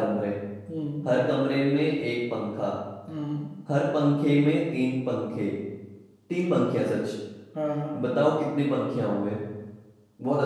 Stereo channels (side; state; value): both; identical; correlation 1.00